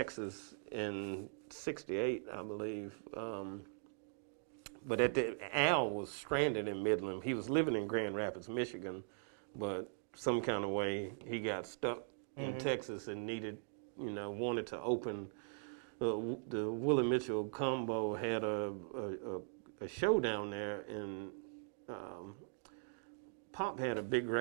in '68, I believe. But Al was stranded in Midland. He was living in Grand Rapids, Michigan, but some kind of way he got stuck in Texas and wanted to open. The Willie Mitchell combo had a show down there, and Pop had a big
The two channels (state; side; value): silent; left; digital silence